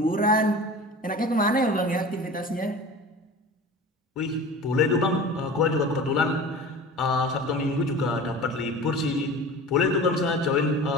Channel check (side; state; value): both; normal; correlation 0.36